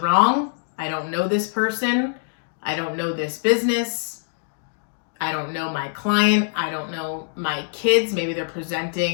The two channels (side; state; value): right; silent; digital silence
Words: I don't know this person. I don't know this business. I don't know my client. I don't know my kids. Maybe they're